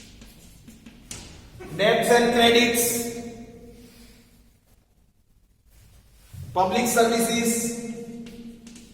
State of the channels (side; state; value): both; identical; correlation 1.00